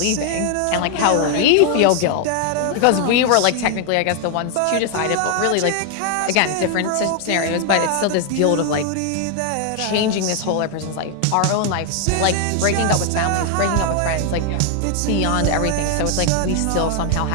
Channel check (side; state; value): both; different; correlation 0.00